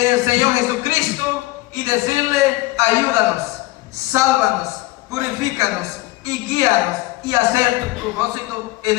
el Señor Jesucristo y decirle: ayúdanos, sálvanos, purifícanos y guíanos y hacer tu propósito en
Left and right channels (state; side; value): quieter; right; 19.7 dB